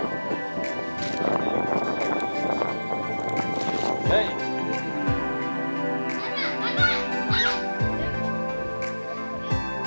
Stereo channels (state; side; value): inverted; both; correlation -1.00